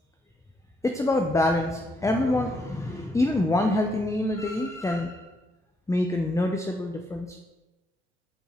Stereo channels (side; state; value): both; normal; correlation 0.76